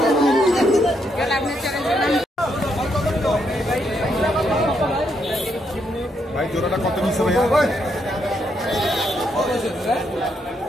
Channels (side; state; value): both; normal; correlation 0.77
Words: ভাই জোড়াটা কত নিচ্ছে ভাইয়া?